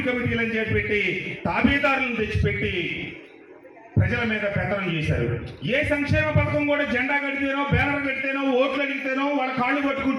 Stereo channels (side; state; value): both; identical; correlation 1.00